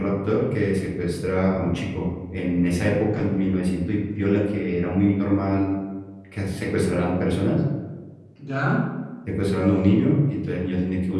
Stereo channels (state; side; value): identical; both; correlation 1.00